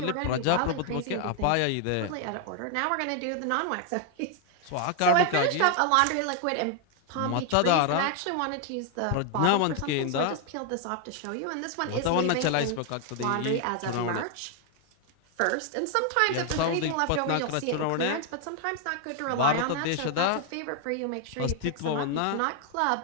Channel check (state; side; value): different; both; correlation 0.00